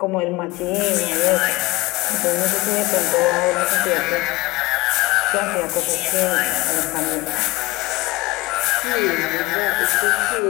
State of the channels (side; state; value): right; quieter; 20.9 dB